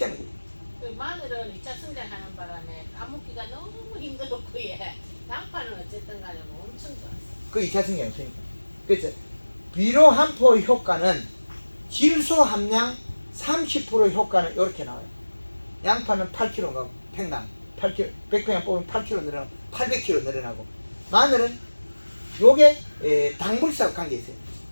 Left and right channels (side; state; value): both; inverted; correlation -1.00